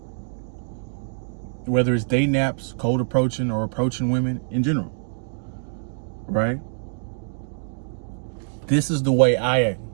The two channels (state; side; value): silent; left; digital silence